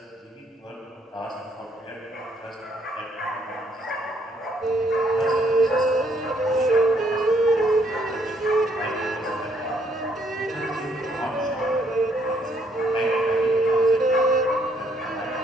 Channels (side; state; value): both; normal; correlation 0.69